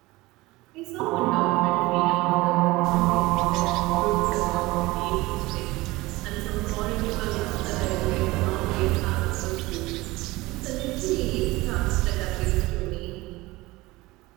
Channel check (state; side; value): quieter; left; 20.5 dB